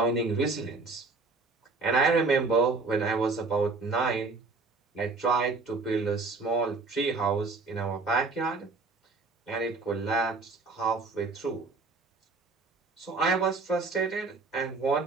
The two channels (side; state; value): left; quieter; 3.9 dB